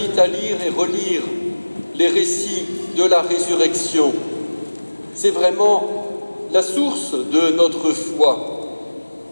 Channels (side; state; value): both; inverted; correlation -1.00